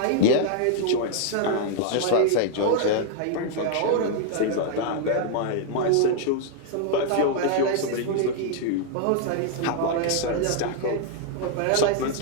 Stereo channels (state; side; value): different; both; correlation 0.00